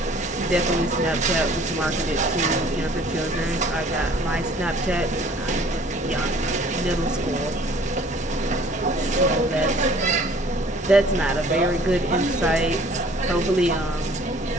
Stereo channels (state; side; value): normal; both; correlation 0.53